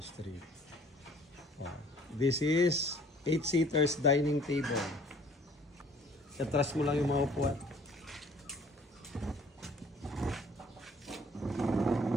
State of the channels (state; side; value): normal; both; correlation 0.55